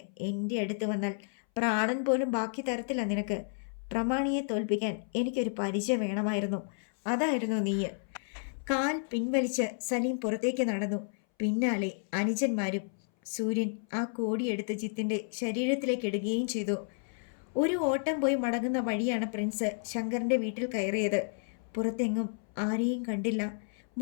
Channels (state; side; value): silent; right; 57 dB below the other